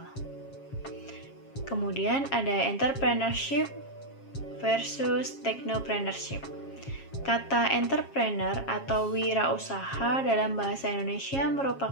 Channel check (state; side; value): late; right; 7.4 ms